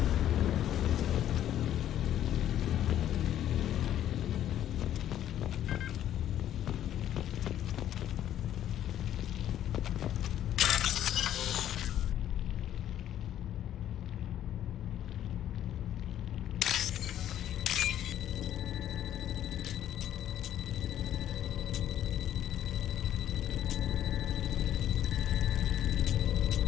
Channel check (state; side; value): quieter; right; 11.3 dB